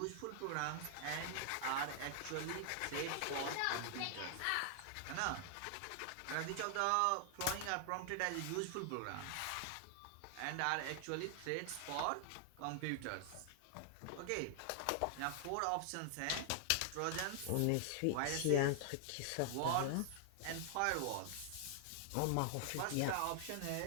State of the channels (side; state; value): both; different; correlation 0.00